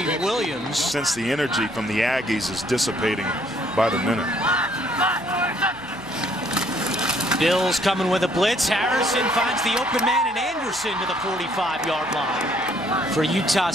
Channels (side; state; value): left; noise; hum, 26 dB below the sound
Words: Williams. Since the energy from the Aggies is dissipating by the minute. Bills coming with a blitz. Harrison finds the open man, and Anderson to the 45-yard line. For Utah